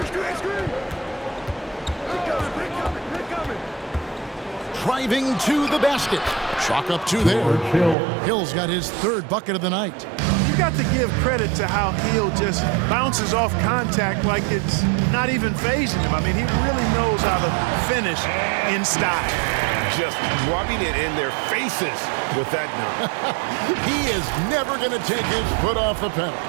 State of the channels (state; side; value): drops out; left; at 8.0 s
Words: Driving to the basket. Chalk up 2 there. Hill's got his 3rd bucket of the night. You got to give credit to how Hill just bounces off contact like it's not even phasing him. I mean, he really knows how to finish in style. Just rubbing it in their faces with that number. He is never going to take his foot off the pedal.